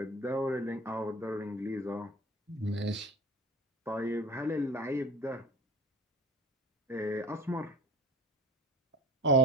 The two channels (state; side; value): normal; both; correlation 0.38